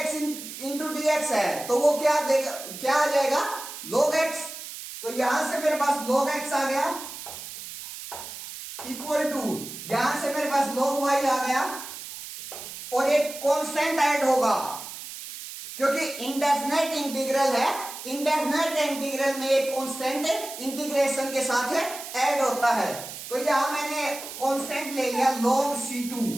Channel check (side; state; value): right; noise; hiss, 11 dB below the sound